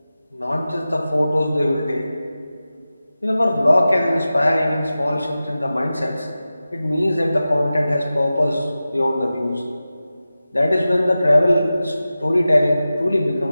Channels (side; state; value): both; inverted; correlation -0.94